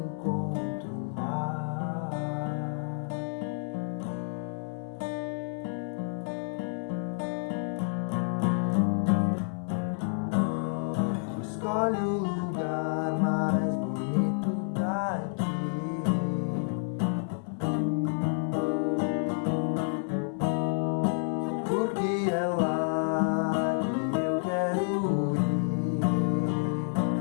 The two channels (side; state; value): right; silent; 58 dB below the other